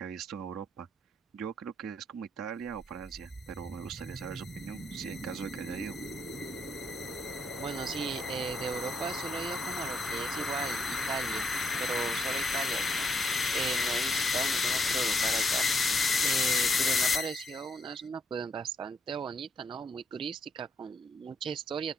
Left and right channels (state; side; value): normal; both; correlation 0.74